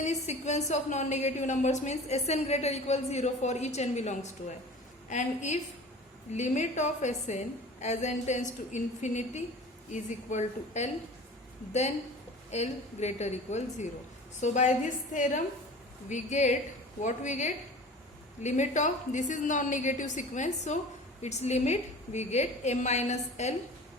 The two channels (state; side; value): normal; both; correlation 0.40